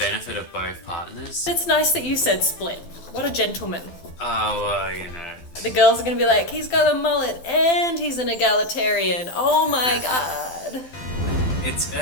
of both partners. It's nice that you said split. What a gentleman. Oh, well, you know. The girls are gonna be like, he's got a mullet and he's an egalitarian. Oh my god. It's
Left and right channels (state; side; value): late; right; 12 ms